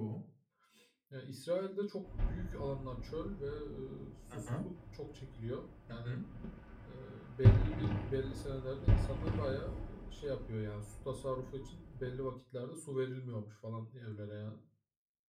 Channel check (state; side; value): identical; both; correlation 1.00